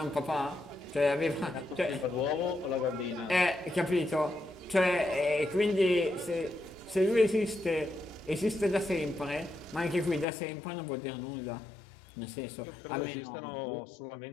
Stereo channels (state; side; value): drops out; right; at 10.2 s